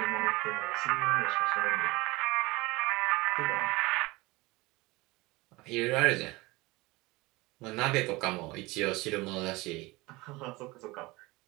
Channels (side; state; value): left; quieter; 22.3 dB